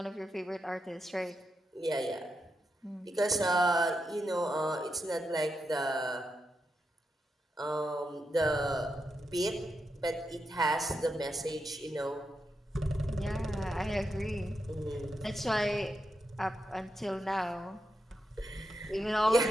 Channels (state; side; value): normal; both; correlation 0.85